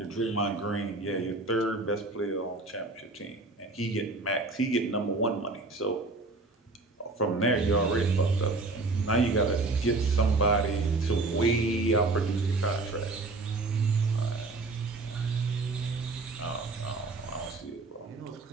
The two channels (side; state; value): left; quieter; 3.3 dB